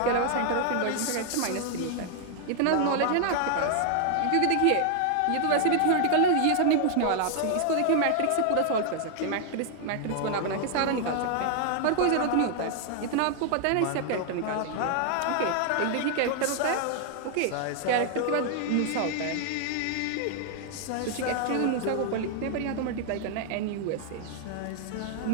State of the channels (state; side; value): different; both; correlation 0.00